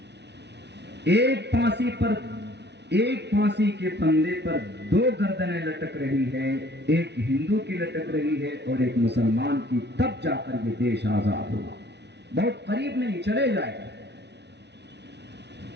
ایک پھانسی کے پھندے پر 2 گردنیں لٹک رہی ہے، ایک ہندو کی لٹک رہی ہے اور ایک مسلمان کی، تب جا کر یہ دیش آزاد ہوا۔ بہت قریب نہیں، چلے جائے گا۔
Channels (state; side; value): late; left; 0.50 ms